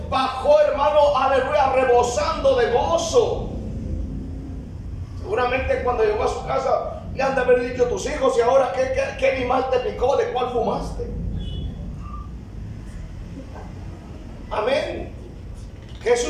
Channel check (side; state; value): both; identical; correlation 1.00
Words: bajó, hermano, aleluya, rebosando de gozo. Seguramente cuando llegó a su casa le han de haber dicho tus hijos: ¿y ahora qué animal te picó? ¿De cuál fumaste? Amén. ¿Qué